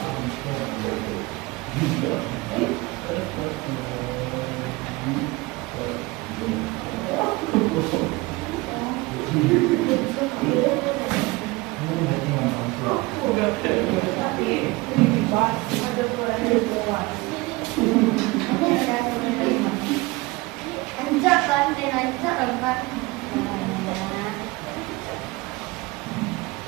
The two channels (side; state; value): left; quieter; 22.6 dB